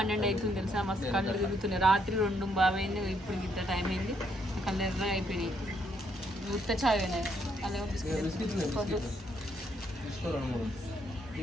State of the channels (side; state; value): both; normal; correlation 0.73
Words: అవుతుంది తెలుసా, మస్తు కళ్ళు తిరుగుతున్నాయి. రాత్రి 2 బాబైంది, ఇప్పుడు ఇంత టైం అయింది, కళ్ళు ఎర్ర అయిపోయినాయి. ఉత్త చాయ్ అయినాయి.